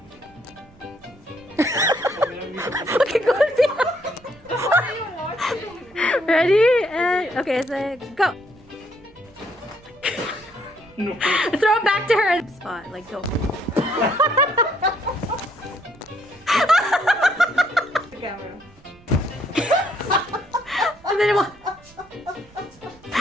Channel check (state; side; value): noise; right; rumble, 27 dB below the sound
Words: Okay, go. Ready? And okay, so go. No. Throw it back to her spot. Like go. The camera. And then it will.